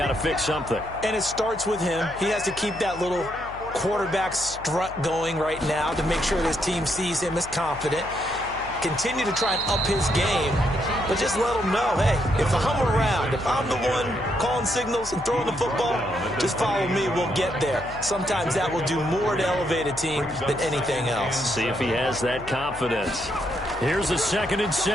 to fix something. And it starts with him. He has to keep that little quarterback strut going right now to make sure this team sees him as confident. Continue to try and up his game, but just let him know, hey, if I'm around, if I'm the one calling signals and throwing the football, just follow me, we'll get there. Sometimes that will do more to elevate a team than anything else. See if he has that confidence. Here's a 2nd and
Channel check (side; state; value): left; noise; hum, 16 dB below the sound